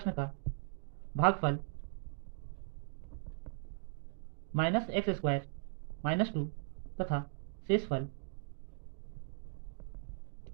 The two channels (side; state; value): left; silent; digital silence